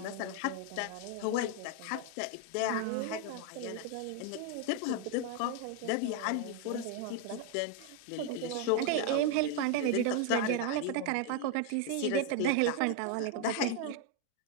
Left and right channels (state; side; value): different; both; correlation 0.01